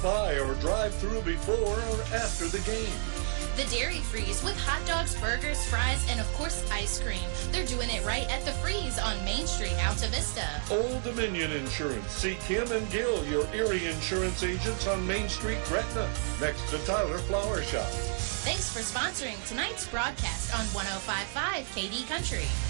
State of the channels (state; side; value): silent; left; 57 dB below the other